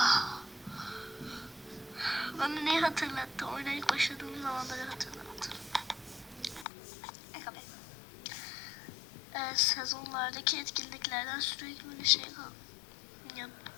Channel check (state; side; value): drops out; right; at 6.7 s